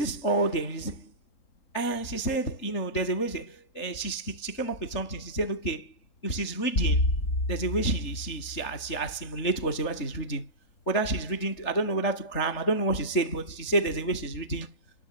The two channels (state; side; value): late; right; 3.4 ms